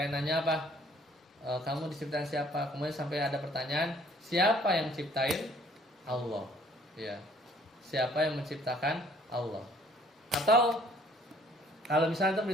nanya apa? Kamu diciptakan siapa? Kemudian sampai ada pertanyaan, siapa yang ciptain? Allah. Ya. Siapa yang menciptakan? Allah. Atau kalau misalnya itu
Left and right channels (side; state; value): both; normal; correlation 0.59